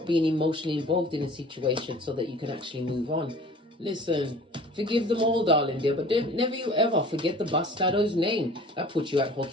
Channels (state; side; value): normal; both; correlation 0.46